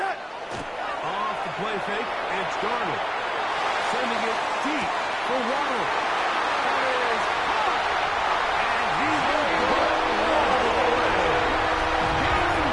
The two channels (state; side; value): identical; both; correlation 1.00